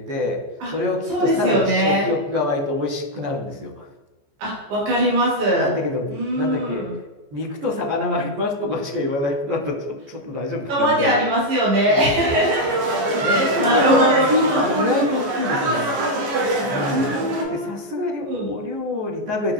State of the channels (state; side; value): late; left; 14 ms